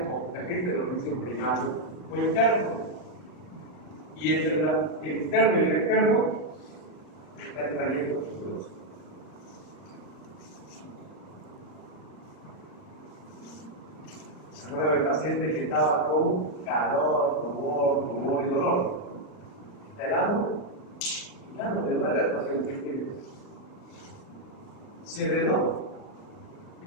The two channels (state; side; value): late; right; 39 ms